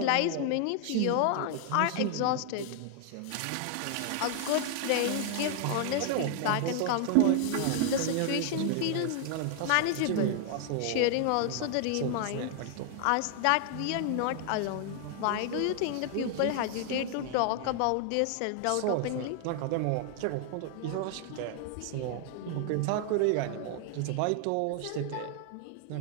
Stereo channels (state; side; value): different; both; correlation 0.00